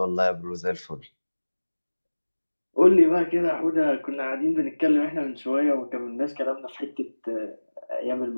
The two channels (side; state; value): both; inverted; correlation -1.00